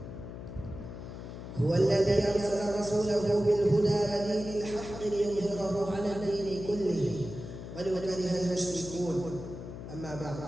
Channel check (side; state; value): left; noise; hum, 10 dB below the sound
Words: هو الذي أرسل رسوله بالهدى ودين الحق ليظهره على الدين كله ولو كره المشركون. أما بعد،